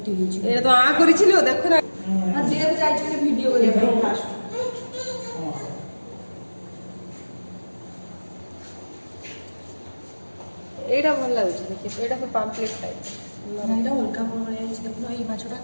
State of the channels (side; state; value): both; inverted; correlation -1.00